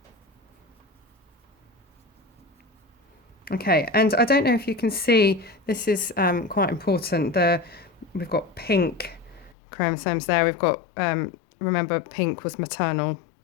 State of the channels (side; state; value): right; drops out; at 9.6 s